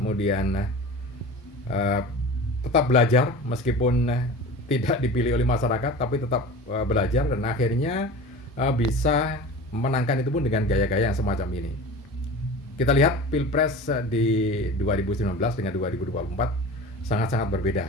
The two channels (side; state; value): both; normal; correlation 0.35